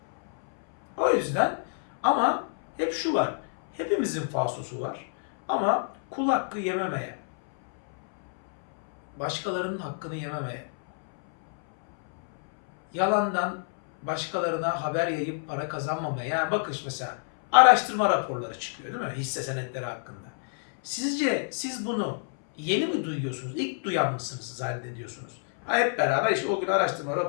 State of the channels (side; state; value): right; silent; 60 dB below the other